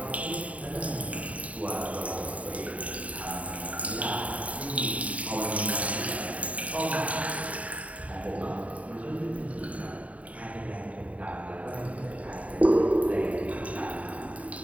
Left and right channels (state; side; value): late; left; 0.068 ms